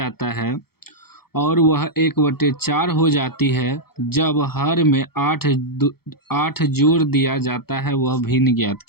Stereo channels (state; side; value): late; right; 0.95 ms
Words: है और वह 1/4 हो जाती है जब हर में 8 जोड़ दिया जाता है। वह भिन्न ज्ञात